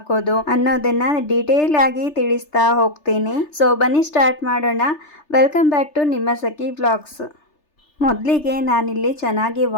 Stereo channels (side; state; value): right; late; 3.3 ms